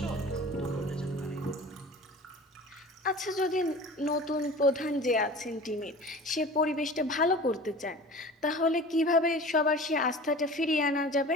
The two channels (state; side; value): normal; both; correlation 0.39